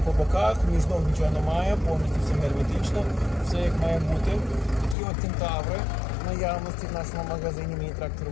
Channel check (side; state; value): right; drops out; at 5.0 s